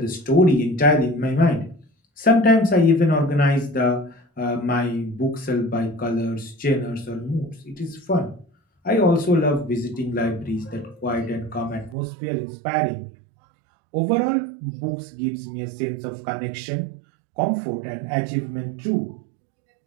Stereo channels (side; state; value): left; drops out; at 12.0 s